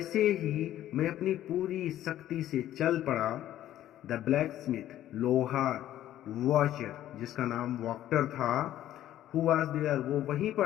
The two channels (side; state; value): right; quieter; 12.7 dB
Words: ही मैं अपनी पूरी शक्ति से चल पड़ा, द ब्लैक स्मिथ, लोहार, वॉचर, जिसका नाम वॉक्टर था, हु वाज देयर, वो वहीं